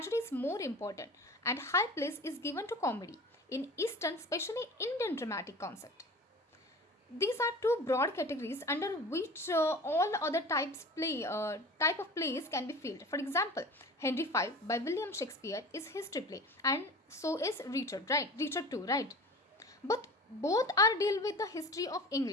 is more important and high place is given to comedy. In Eastern, especially Indian dramatic concept, these are two broad categories under which all other type of plays can be filled. For example, Henry V by William Shakespeare is history play, and so is Richard, right? Richard too, right? But both are deal with the history of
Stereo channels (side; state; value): both; normal; correlation 0.38